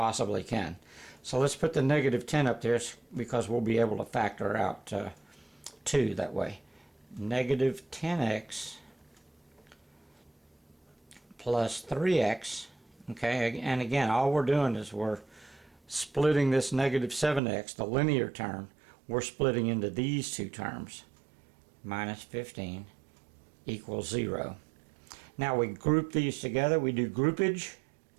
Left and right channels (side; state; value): left; drops out; at 17.4 s